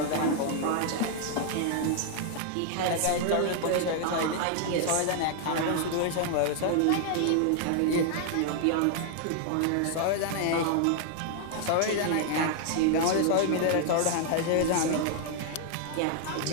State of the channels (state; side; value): different; both; correlation 0.00